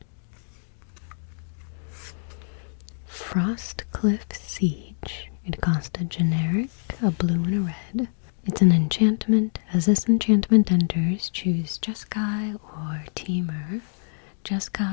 Frostcliff Siege. It cost a generic, a blue and a red. It's an enchantment. As this enchantment enters, choose Jeskai or Teamer.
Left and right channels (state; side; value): silent; right; digital silence